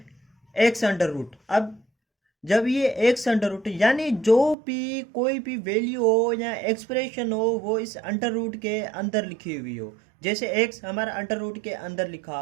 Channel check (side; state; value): left; drops out; at 4.5 s